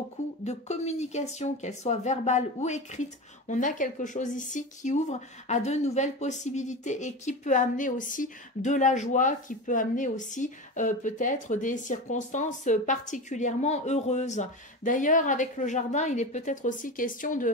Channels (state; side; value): normal; both; correlation 0.25